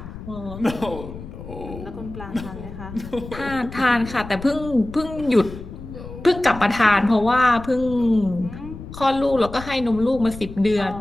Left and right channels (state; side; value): noise; left; rumble, 13 dB below the sound